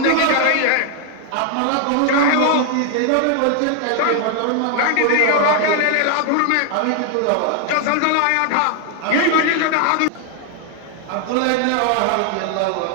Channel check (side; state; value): both; different; correlation 0.00